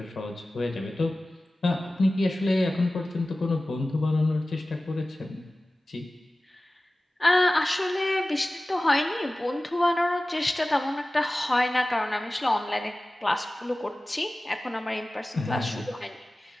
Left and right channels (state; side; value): normal; both; correlation 0.97